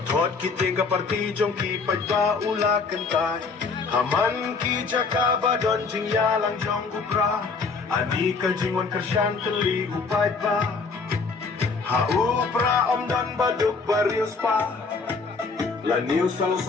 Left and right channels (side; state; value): right; quieter; 4.6 dB